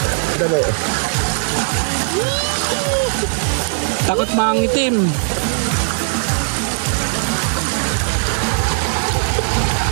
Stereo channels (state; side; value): silent; left; 66 dB below the other